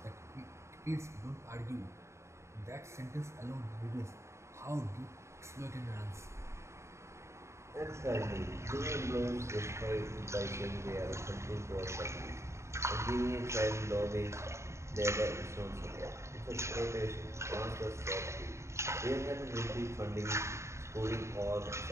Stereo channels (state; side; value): late; left; 0.14 ms